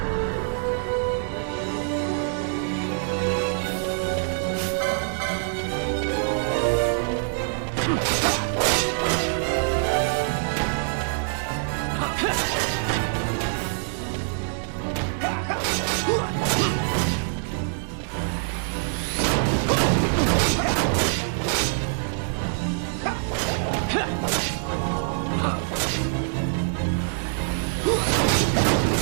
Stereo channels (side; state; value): left; silent; digital silence